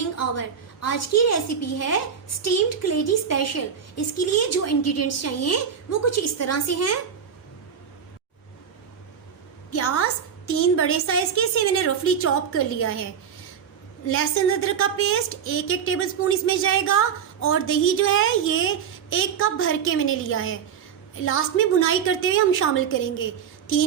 आवर। आज की रेसिपी है स्टीम्ड कलेजी स्पेशल। इसके लिए जो इंग्रेडिएंट्स चाहिए वो कुछ इस तरह से हैं। प्याज 3 बड़े साइज के, इसे मैंने रफली चॉप कर लिया है। लहसुन अदरक का पेस्ट 1 टेबल स्पून इसमें जाएगा। और दही जो है ये 1 कप भर के मैंने लिया है। लास्ट में भुनाई करते हुए हम शामिल करेंगे।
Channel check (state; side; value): quieter; left; 7.6 dB